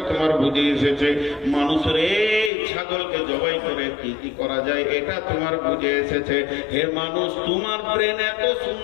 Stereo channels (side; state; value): right; drops out; at 2.5 s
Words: তোমার বুঝে এসেছে। মানুষের এই ছাগলকে জবাই করে কি কি করা যায়, এটা তোমার বুঝে এসেছে। হে মানুষ, তোমার ব্রেন এত